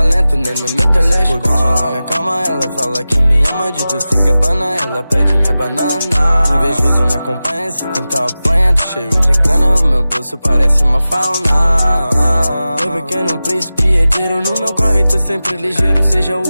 nem no meu telescópio. Na minha calma ela fala que me ama de doce cabana. Ela pede minha banana. Invejoso me acompanha, se tentar apanha. Tô cheio de grana, o meu bolso parece uma fauna. Meu pequeno príncipe herdeiro, no meu corre tô sempre ligeiro. Seja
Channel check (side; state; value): both; inverted; correlation -0.95